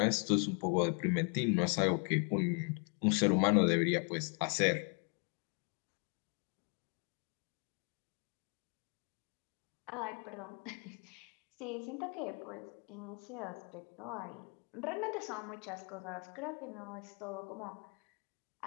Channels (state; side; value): quieter; right; 38.4 dB